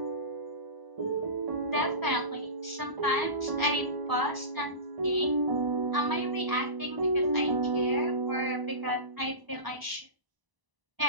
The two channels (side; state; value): left; late; 1.0 ms